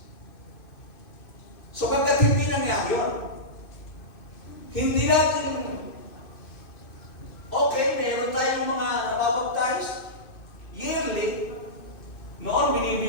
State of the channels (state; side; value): late; right; 2.6 ms